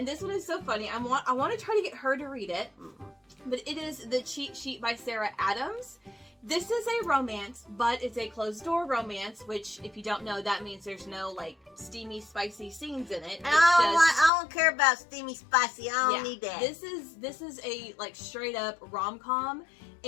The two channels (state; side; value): drops out; right; at 14.3 s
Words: this one is so funny. I want to try to get her to read it. But it is The Cheat Sheet by Sarah Adams. This is a romance, but it's a closed-door romance, which, if you don't know, that means there's no, like, steamy, spicy scenes in it. I don't care about steamy, spicy. I don't need that. This is a, like, straight-up rom-com,